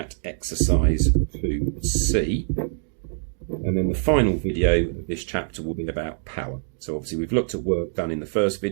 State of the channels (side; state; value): left; silent; digital silence